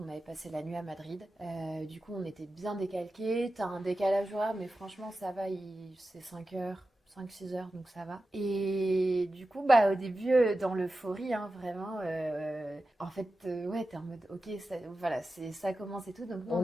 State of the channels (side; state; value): both; normal; correlation 0.93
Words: on avait passé la nuit à Madrid. Du coup, on était bien décalqués. T'as un décalage horaire, mais franchement, ça va, c'est 5 heures. 5-6 heures, donc ça va. Et du coup, au début, dans l'euphorie, hein, vraiment, en fait, ouais, t'es en mode, ok, voilà, ça commence et tout. Donc, nous, On on